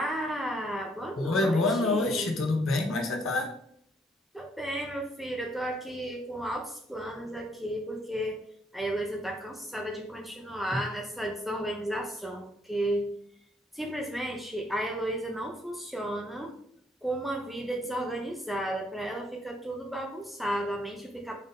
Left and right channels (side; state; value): both; normal; correlation 0.69